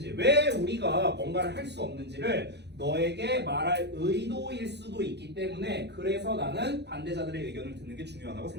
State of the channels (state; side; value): late; left; 0.50 ms